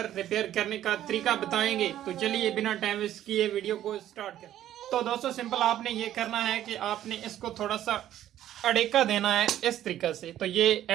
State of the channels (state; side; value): quieter; left; 12.2 dB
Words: रिपेयर करने का तरीका बताएंगे। तो चलिए बिना टाइम वेस्ट किए वीडियो को स्टार्ट करें। तो दोस्तों सिंपल आपने ये करना है कि आपने इसको थोड़ा सा अड़ेका देना है इस तरीके से, तो ये